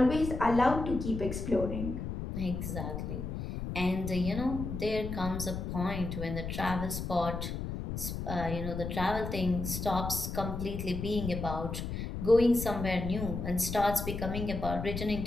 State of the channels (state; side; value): noise; left; rumble, 5 dB below the sound